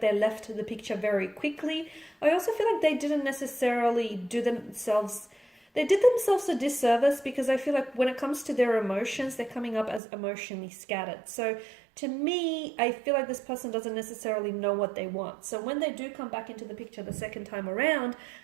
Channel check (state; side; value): drops out; left; at 10.0 s